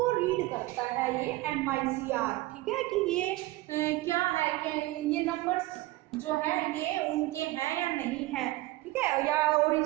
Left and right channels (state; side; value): quieter; left; 18.6 dB